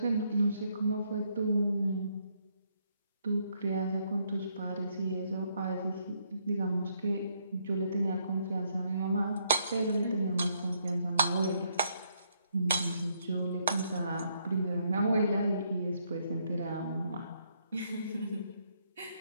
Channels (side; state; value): both; inverted; correlation -0.73